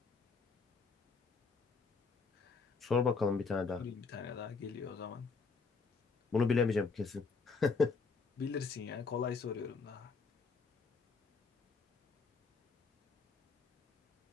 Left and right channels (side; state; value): right; quieter; 4.8 dB